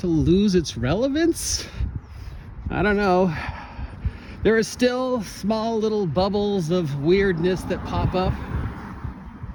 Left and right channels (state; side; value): identical; both; correlation 1.00